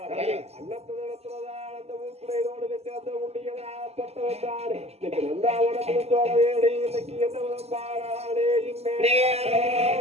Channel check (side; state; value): left; late; 0.30 ms